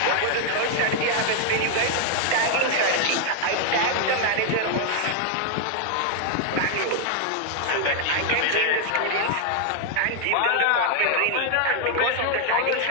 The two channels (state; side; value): different; both; correlation 0.00